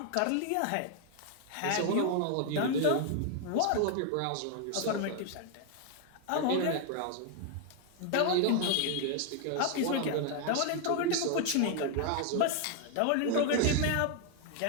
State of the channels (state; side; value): different; both; correlation 0.00